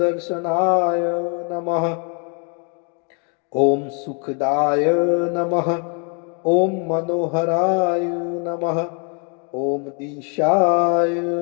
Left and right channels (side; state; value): right; quieter; 38.5 dB